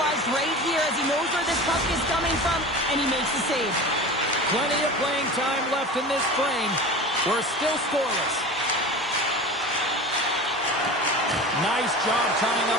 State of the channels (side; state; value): both; normal; correlation 0.33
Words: right here as he knows where this puck is coming from, and he makes the save. Plenty of playing time left in this frame. We're still scoreless. Nice job tying